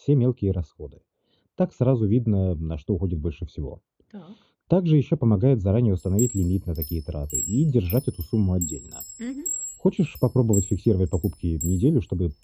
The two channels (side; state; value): both; identical; correlation 1.00